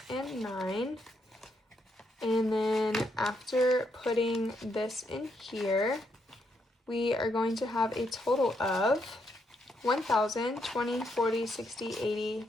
and 9. And then after putting this in here, we are going to have a total of 1,000, 20, 40, 60, 80,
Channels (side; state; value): both; normal; correlation 0.77